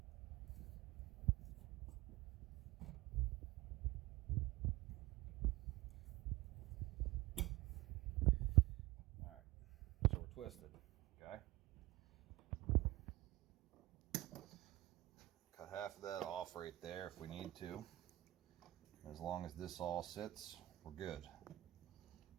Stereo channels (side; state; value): left; quieter; 17.9 dB